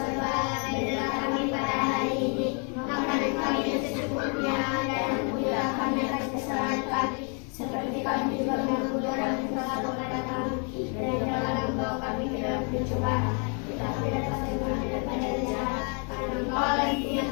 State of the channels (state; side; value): quieter; right; 38.5 dB